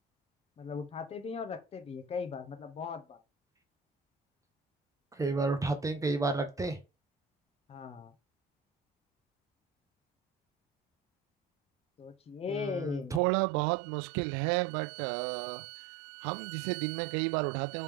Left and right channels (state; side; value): drops out; left; at 13.2 s